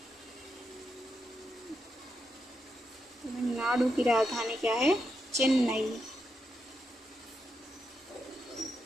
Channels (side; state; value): both; normal; correlation 0.83